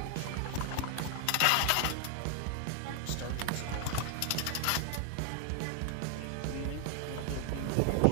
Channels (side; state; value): both; different; correlation 0.00